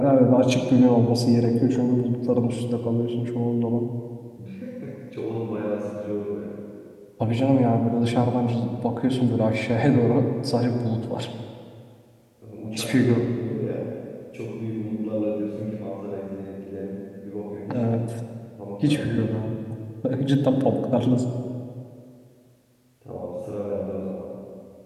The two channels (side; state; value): both; identical; correlation 1.00